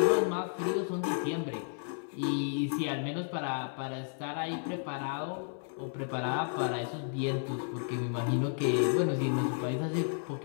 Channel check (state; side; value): silent; right; 56 dB below the other